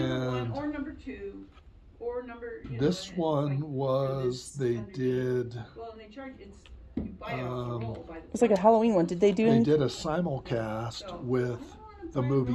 1 or number 2 or number. This one was they did. Well, and they charge you buy it off the roll. It's like a Halloween one. Did they do? They did a simulcast with the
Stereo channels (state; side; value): identical; both; correlation 1.00